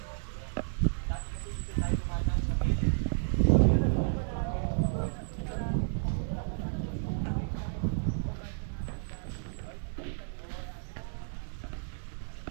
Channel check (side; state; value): left; silent; 56 dB below the other